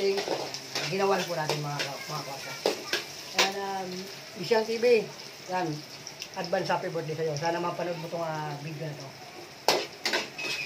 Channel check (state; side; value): identical; both; correlation 1.00